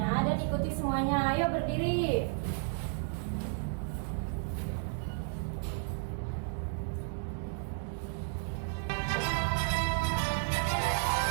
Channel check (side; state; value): left; silent; 56 dB below the other